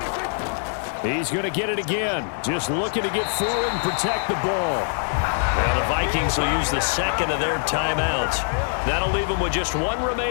He's going to get it again. Just looking to get forward and protect the ball. Well, the Vikings will use the 2nd of their timeouts. That'll leave them with just 1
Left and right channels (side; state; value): right; silent; digital silence